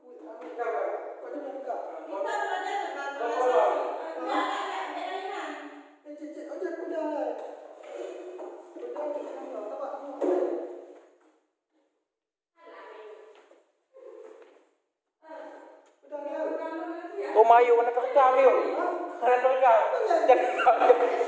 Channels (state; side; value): identical; both; correlation 1.00